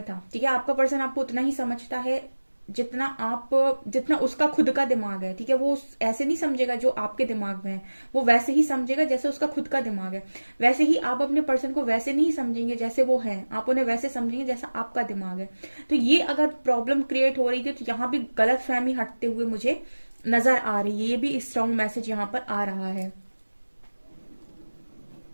था, ठीक है। आपका पर्सन आपको उतना ही समझता है जितना उसका खुद का दिमाग है, ठीक है। वो ऐसे नहीं समझेगा जो आपके दिमाग में है, वो वैसे ही समझेगा जैसे उसका खुद का दिमाग है। वैसे ही आप अपने पर्सन को वैसे नहीं समझेंगे जैसे वो है, आप उन्हें वैसे समझेंगे जैसा आपका दिमाग है। तो ये अगर प्रॉब्लम क्रिएट हो रही थी, तो यहाँ भी गलत फहमी हटते हुए मुझे नजर आ रही है। ये भी स्ट्रॉन्ग मैसेज यहाँ पर आ रहा है।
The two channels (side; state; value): both; inverted; correlation -1.00